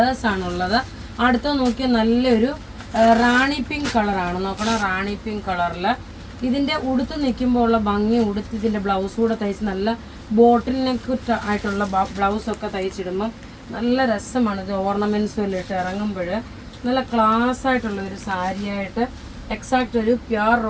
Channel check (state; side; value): identical; both; correlation 1.00